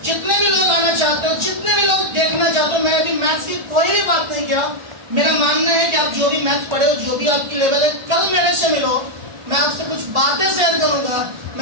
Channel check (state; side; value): late; left; 1.4 ms